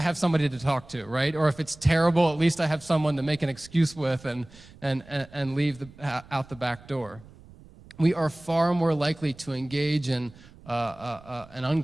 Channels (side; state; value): right; noise; rumble, 22 dB below the sound